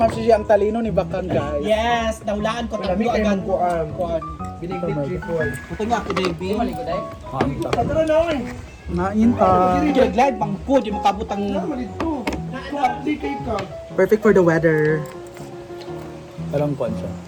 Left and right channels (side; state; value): both; identical; correlation 1.00